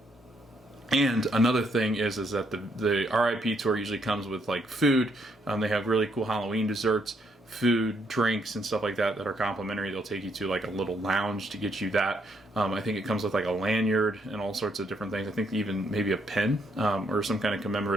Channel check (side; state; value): both; normal; correlation 0.73